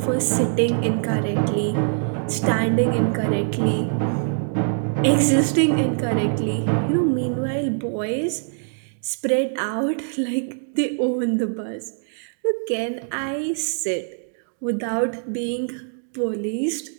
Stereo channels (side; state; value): left; silent; digital silence